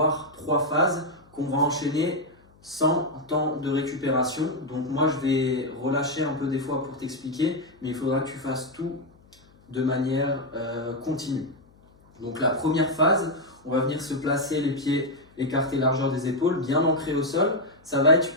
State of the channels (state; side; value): noise; left; hum, 29 dB below the sound